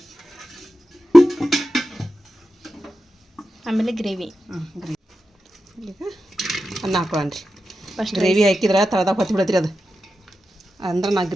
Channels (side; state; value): both; normal; correlation 0.91